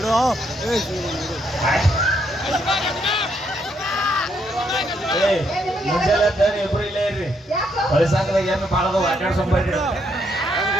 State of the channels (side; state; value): both; normal; correlation 0.74